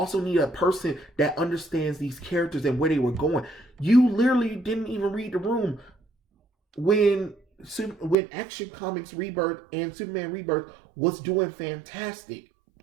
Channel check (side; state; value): left; drops out; at 8.2 s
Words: need a person that understands these characters and where they were going. You literally didn't even read the room when Action Comics Rebirth and Superman Rebirth was doing fantastic.